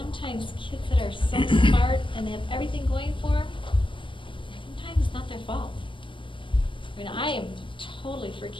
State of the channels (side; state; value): right; late; 0.25 ms